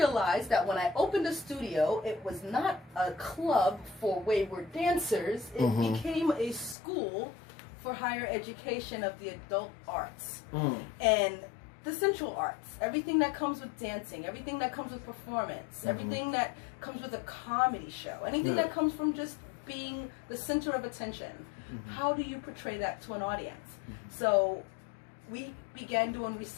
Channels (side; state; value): right; drops out; at 6.8 s